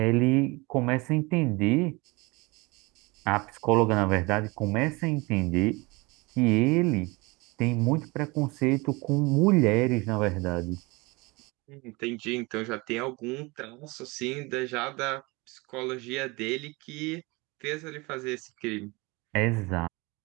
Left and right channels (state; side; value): quieter; left; 25.0 dB